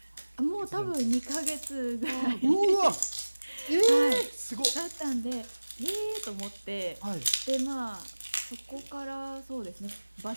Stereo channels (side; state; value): both; inverted; correlation -1.00